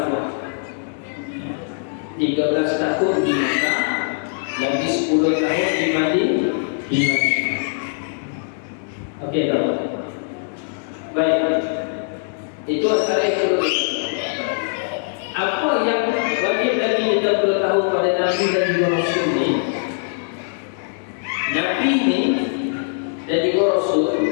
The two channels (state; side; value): silent; right; digital silence